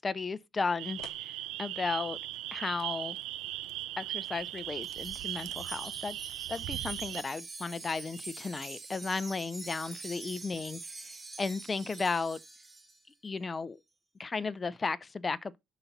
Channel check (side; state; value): both; normal; correlation 0.79